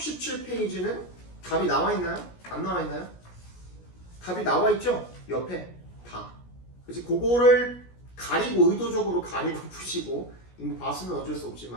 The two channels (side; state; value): right; late; 17 ms